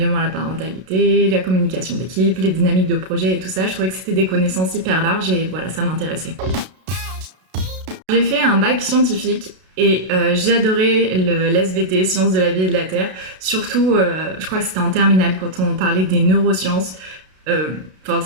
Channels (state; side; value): late; left; 32 ms